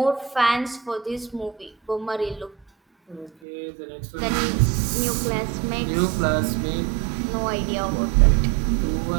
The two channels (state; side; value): drops out; left; at 3.3 s